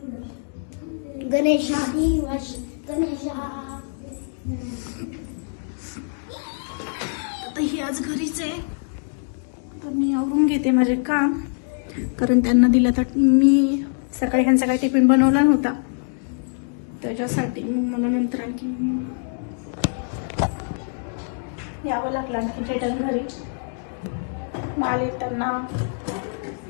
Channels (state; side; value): silent; right; 63 dB below the other